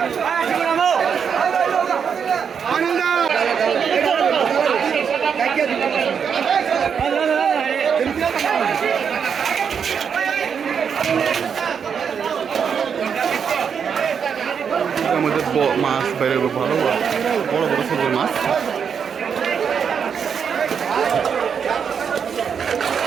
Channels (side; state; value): left; quieter; 7.0 dB